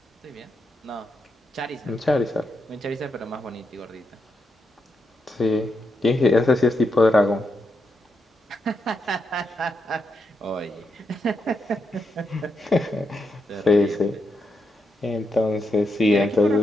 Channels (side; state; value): both; normal; correlation 0.84